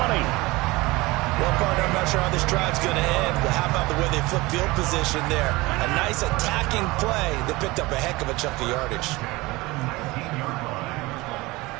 Well, partner, I'm not sure how this drive's going to end, but how about the way they flip field position there? A nice attacking play that picked up a heck of a chunk of yardage.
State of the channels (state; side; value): quieter; left; 21.7 dB